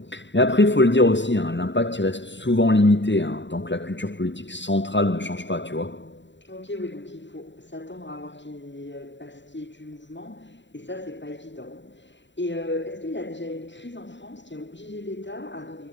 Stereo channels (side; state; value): right; late; 0.53 ms